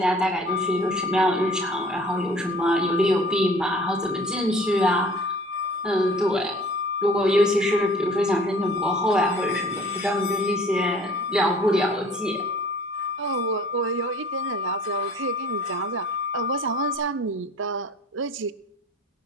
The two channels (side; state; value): both; normal; correlation 0.49